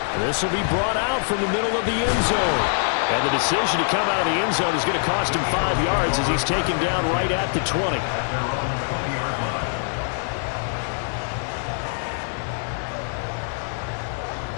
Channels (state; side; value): silent; right; digital silence